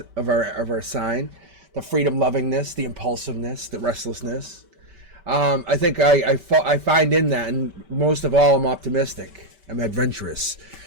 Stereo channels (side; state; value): left; late; 5.2 ms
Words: sign, the freedom lovingness, the impulsiveness, the restlessness. I think I find in that, and most of all, I'm optimistic. I'm adventurous.